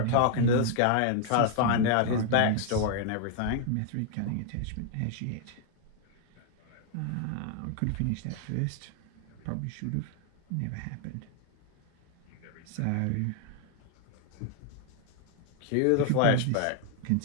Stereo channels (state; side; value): different; both; correlation 0.00